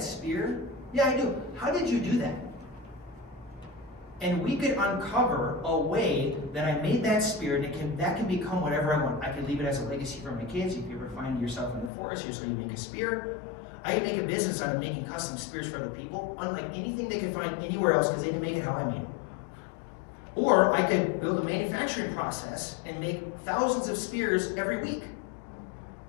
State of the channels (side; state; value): right; drops out; at 11.9 s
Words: spear? Yeah, I do. How did you do that? And we could uncover a way that I made that spear, and that can become whatever I want. I could leave it as a legacy for my kids. If you ever find yourself in the forest, here's how you make a spear. I can make a business out of making custom spears for other people, unlike anything they could find anywhere else because they didn't make it how I made it. Or I could build a manufacturing process and make thousands of spears every week.